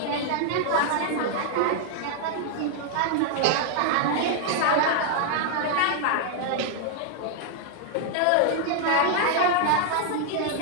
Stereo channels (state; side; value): different; both; correlation -0.01